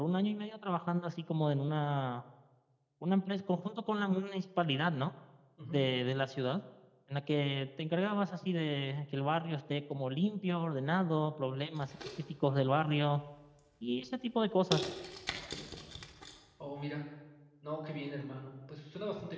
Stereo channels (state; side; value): identical; both; correlation 1.00